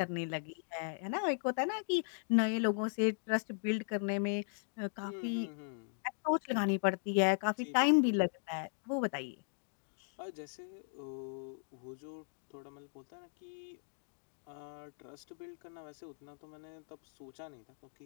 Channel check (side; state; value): right; silent; digital silence